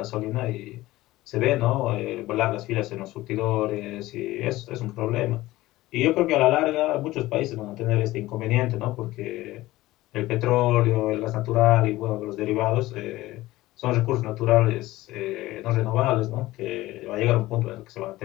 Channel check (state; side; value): quieter; right; 17.5 dB